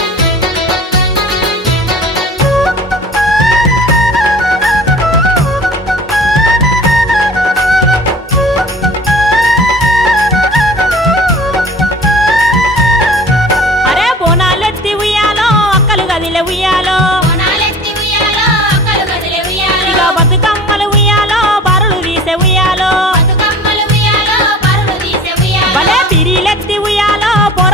అరే బోనాలెత్తి ఉయ్యాలో అక్కలు గదిలే ఉయ్యాలో బోనాలెత్తి ఉయ్యాలో అక్కలు గదిలే ఉయ్యాలో ఇక బతుకమ్మలు ఉయ్యాలో బరులు తీసే ఉయ్యాలో బతుకమ్మలు ఉయ్యాలో పరులు తీసే ఉయ్యాలో భలే పిరీలెత్తి ఉయ్యాలో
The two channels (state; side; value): normal; both; correlation 0.43